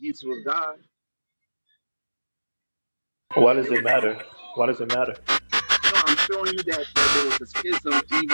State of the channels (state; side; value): inverted; both; correlation -1.00